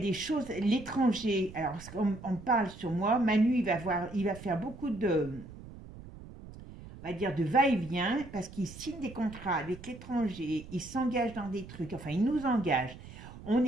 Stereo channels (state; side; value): noise; right; rumble, 16 dB below the sound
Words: choses, l'étranger, alors on parle sur moi, Manu, il va faire beaucoup de, on va dire, de va-et-vient, parce qu'il signe des contrats avec l'étranger, il s'engage dans des trucs, enfin, il nous engage. On